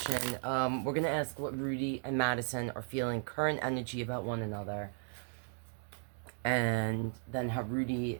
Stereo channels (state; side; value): silent; left; 54 dB below the other